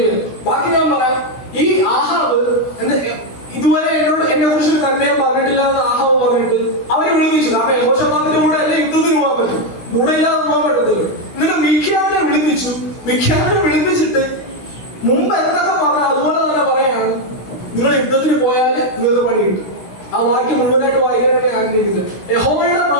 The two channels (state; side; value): late; right; 16 ms